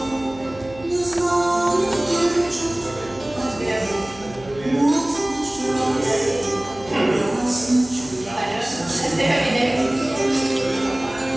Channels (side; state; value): right; noise; hum, 20 dB below the sound